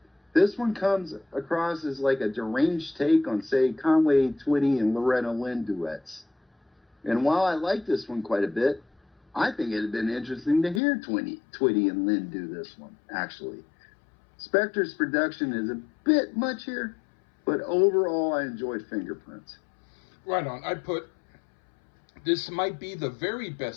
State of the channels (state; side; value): drops out; right; at 10.8 s